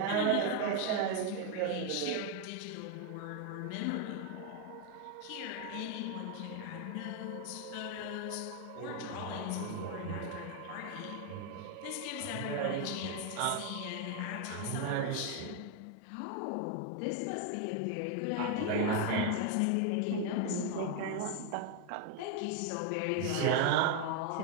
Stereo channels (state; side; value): different; both; correlation 0.01